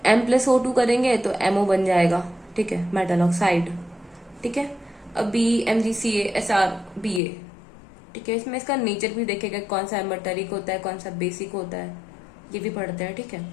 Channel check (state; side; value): drops out; right; at 7.2 s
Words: M प्लस O2 करेंगे तो MO बन जाएगा। ठीक है, मेटल ऑक्साइड। ठीक है, अब BMgCaSrBa। ठीक है, इसमें इसका नेचर भी देखेगा कौन सा एमर्टरिक होता है कौन सा बेसिक होता है, ये भी पढ़ते हैं। ठीक है,